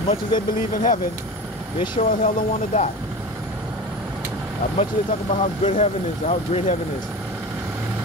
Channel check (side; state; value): both; normal; correlation 0.31